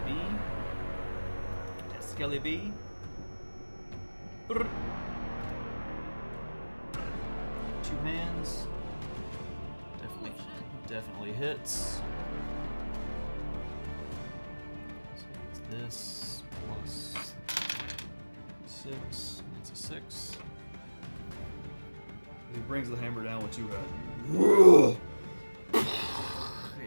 B. At Skelly B. Brrr. Two hands. Definitely hits. So it's this plus 6. That's a 6. He brings the hammer down with two hands.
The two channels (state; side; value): inverted; both; correlation -1.00